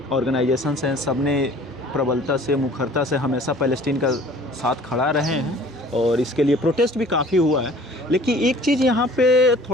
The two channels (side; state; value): both; normal; correlation 0.50